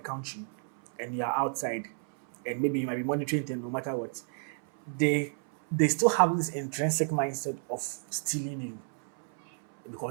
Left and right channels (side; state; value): left; silent; 57 dB below the other